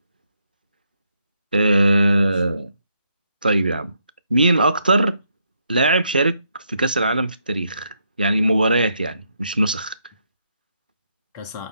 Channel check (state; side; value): inverted; both; correlation -0.77